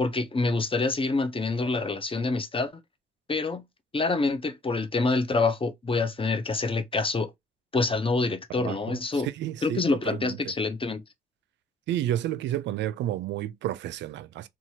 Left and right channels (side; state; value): both; normal; correlation 0.57